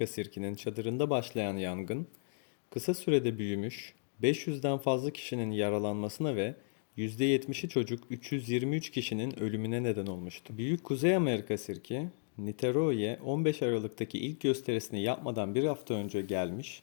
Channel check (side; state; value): right; silent; digital silence